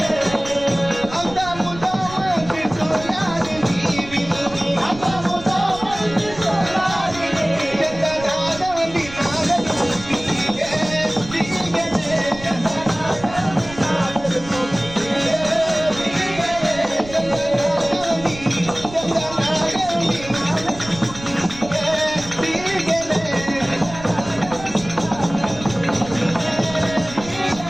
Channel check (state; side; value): noise; right; rumble, 15 dB below the sound